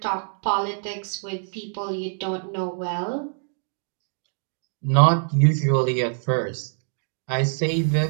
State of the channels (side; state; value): left; silent; 62 dB below the other